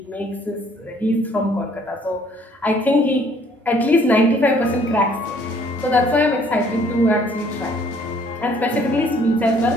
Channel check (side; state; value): both; normal; correlation 0.60